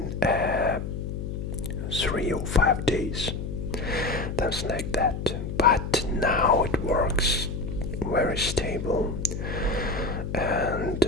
3 or 5 days, something like that. But now it works very stable, and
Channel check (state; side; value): noise; left; hum, 5 dB below the sound